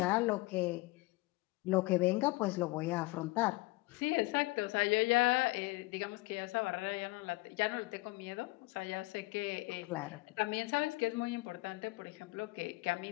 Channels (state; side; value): quieter; right; 22.0 dB